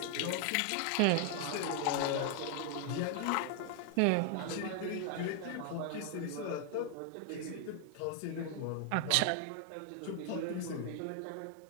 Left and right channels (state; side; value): different; both; correlation 0.00